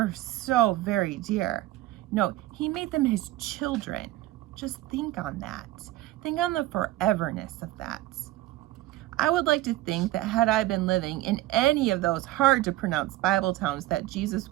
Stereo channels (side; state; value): left; quieter; 16.2 dB